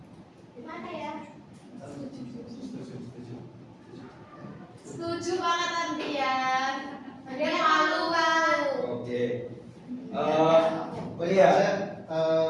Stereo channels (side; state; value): both; identical; correlation 1.00